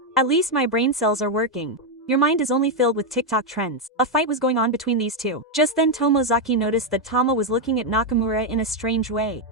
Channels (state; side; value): normal; both; correlation 0.03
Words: "At least my brain cells are working. Your mind is only filled with TikTok trends." A fight was going on between these two. Just then Tomozaki noticed that Tama was looking at Nakamura in a strange way.